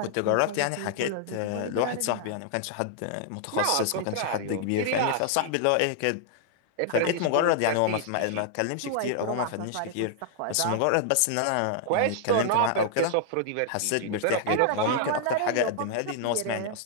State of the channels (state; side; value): different; both; correlation -0.01